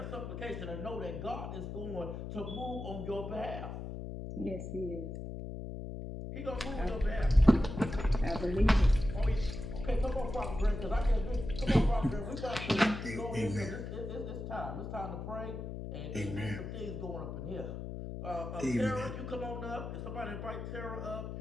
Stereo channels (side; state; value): left; noise; hum, 7 dB below the sound